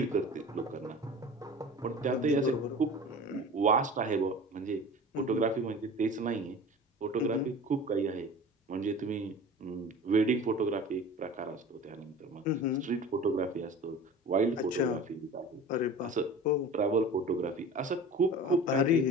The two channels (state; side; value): normal; both; correlation 0.37